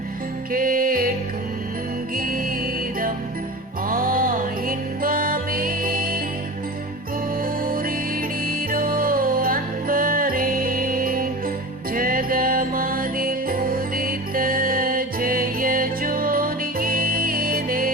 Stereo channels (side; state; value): both; normal; correlation 0.31